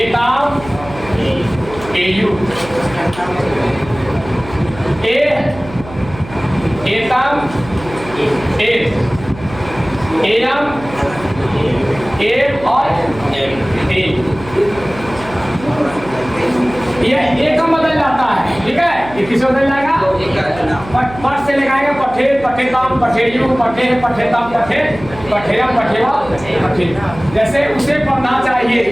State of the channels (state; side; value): noise; right; hum, 15 dB below the sound